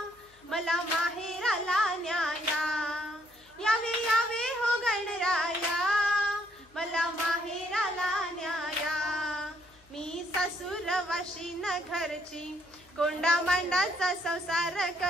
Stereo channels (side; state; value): left; noise; hum, 30 dB below the sound